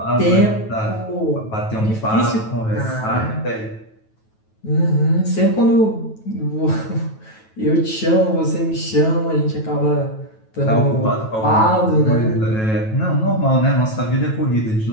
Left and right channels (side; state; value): right; late; 9.2 ms